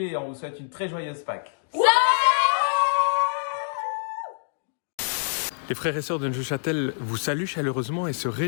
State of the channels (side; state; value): right; silent; digital silence